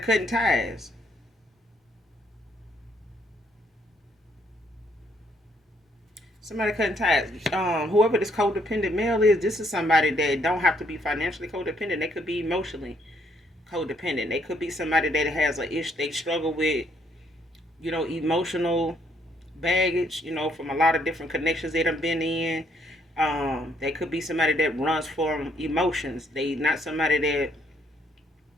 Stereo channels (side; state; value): both; normal; correlation 0.69